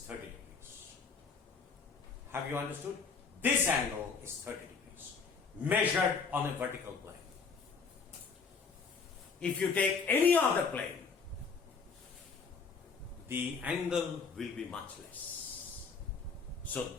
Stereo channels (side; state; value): right; quieter; 5.2 dB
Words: 30 degrees. Have you understood? This angle is 30 degrees. Measured on a vertical plane. If you take any other plane, the angle will be much less. So